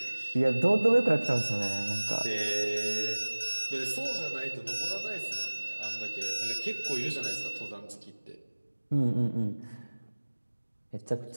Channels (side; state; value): both; inverted; correlation -1.00